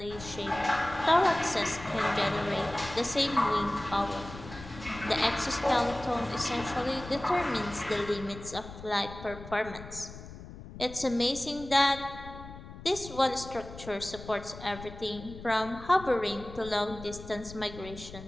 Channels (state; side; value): noise; left; rumble, 14 dB below the sound